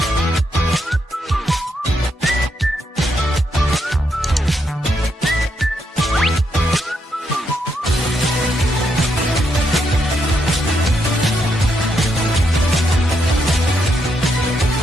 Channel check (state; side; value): normal; both; correlation 0.79